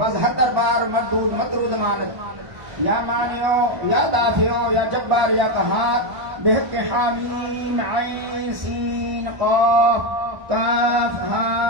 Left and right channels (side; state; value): left; late; 1.0 ms